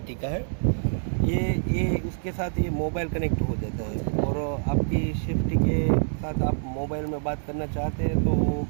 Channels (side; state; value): left; silent; digital silence